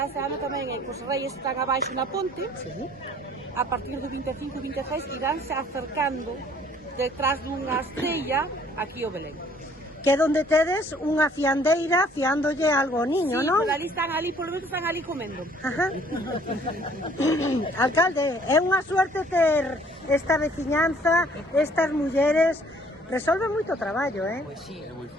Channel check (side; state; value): both; normal; correlation 0.58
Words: este ano tamén é que os reis están abaixo na ponte. A partir do 25 e 26 iránse acercando detrás dunha estrella aquí ao Belén. Que é onde tedes unha fiandeira fiándolle algo ao niño, sí, non? Sí, polo menos están ali comendo. Ajá. Alcalde, é unha suerte ter esta veciñanza, estas mulleres. Resolve moito traballo, Pues sí. Es muy